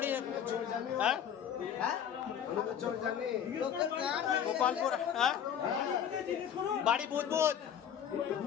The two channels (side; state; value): right; quieter; 8.8 dB